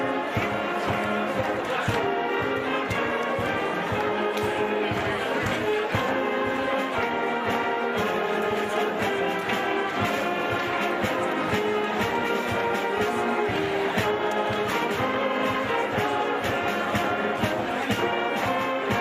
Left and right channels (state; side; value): identical; both; correlation 1.00